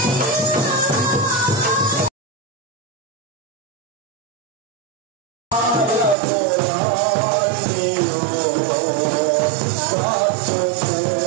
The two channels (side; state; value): left; drops out; at 6.2 s